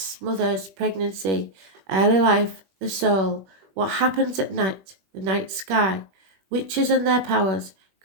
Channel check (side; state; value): left; late; 21 ms